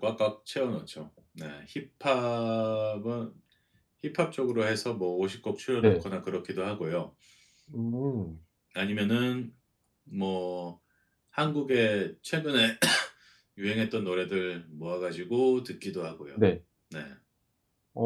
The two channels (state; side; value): identical; both; correlation 1.00